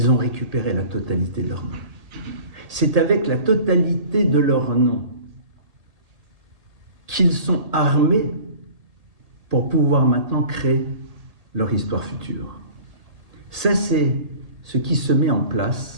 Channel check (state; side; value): late; left; 1.8 ms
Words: ont récupéré la totalité de leur nom. C'est avec la totalité de leur nom qu'ils sont armés pour pouvoir maintenant créer leur histoire future. Ça, c'est ce qui se met en